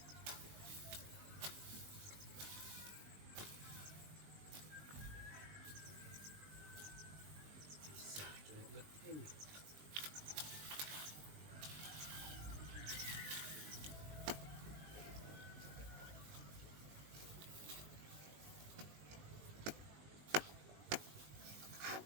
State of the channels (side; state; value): left; late; 20 ms